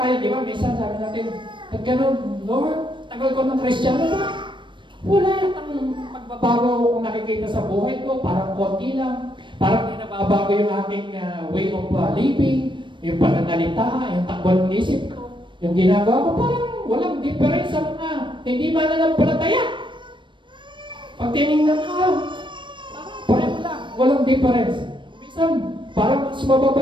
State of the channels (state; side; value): late; left; 0.23 ms